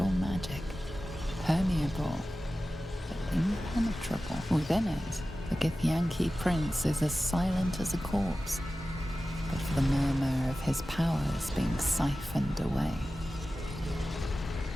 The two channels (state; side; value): normal; both; correlation 0.95